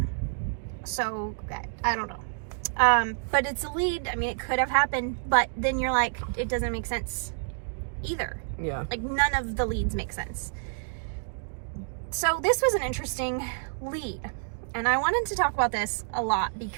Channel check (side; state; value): left; silent; digital silence